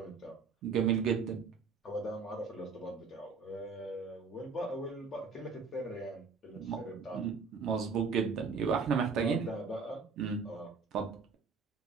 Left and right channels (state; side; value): quieter; left; 5.0 dB